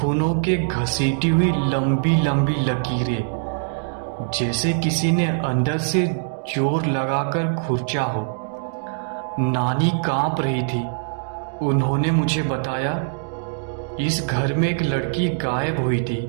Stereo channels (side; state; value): left; silent; digital silence